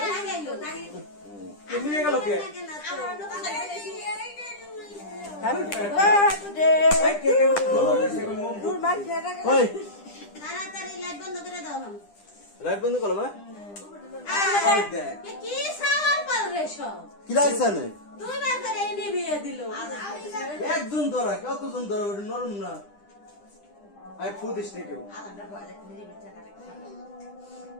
লাগাইলো তাই তুমি নিয়ে গেল কে আমার লোক খাইছে হ্যাপি বার্থডে এই কে ধরা দে সে মুম দূর মার খেলা ওই তাড়াতাড়ি লাইট বন্ধ করে দাও হাম লাইট বন্ধ করো না ওই দেখ কি সাওয়াল পাল রে সব কি লাগছে না দুইবার করে নিবিয়ে দিল একজন ধরা কতজন ধরা ওটা নরম না আই ফুদিস না কেউ আলাদা বলে দিদি মিঠা কাটে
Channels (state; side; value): late; right; 10 ms